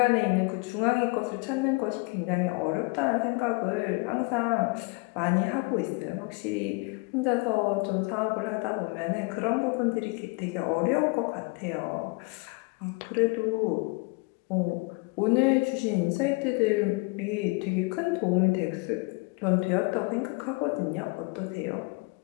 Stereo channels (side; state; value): right; quieter; 28.2 dB